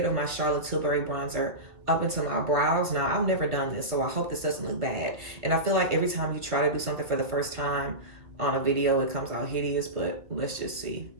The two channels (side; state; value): left; late; 1.8 ms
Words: of my Charlotte Tilbury bronzer up into my brows. Now, I've never done this, so I hope this doesn't look bad. And I feel like every time you try to do something for the first time on a video, it comes out hideous, but let's just see.